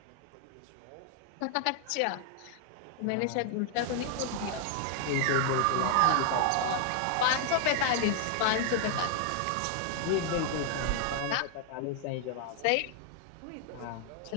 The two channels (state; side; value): different; both; correlation 0.00